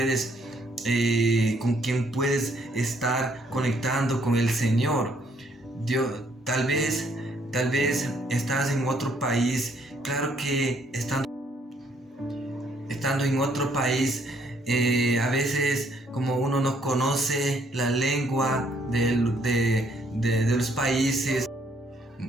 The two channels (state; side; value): normal; both; correlation 0.67